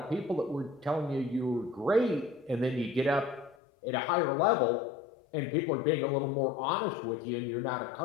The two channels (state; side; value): drops out; right; at 3.6 s